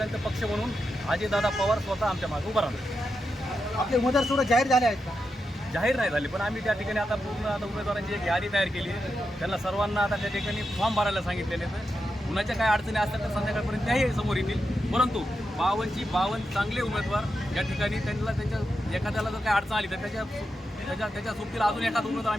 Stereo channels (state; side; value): normal; both; correlation 0.87